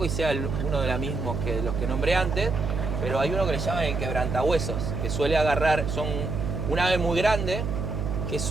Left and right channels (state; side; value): noise; right; hum, 3 dB below the sound